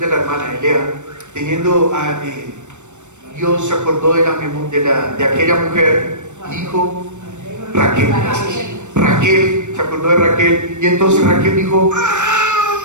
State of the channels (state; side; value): late; left; 0.84 ms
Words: la hermana Elea, Dios se acordó de aquella mujer, dijo Raquel, se acordó de Raquel, y entonces Raquel dijo,